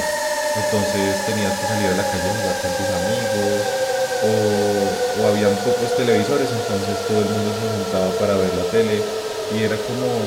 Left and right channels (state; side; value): identical; both; correlation 1.00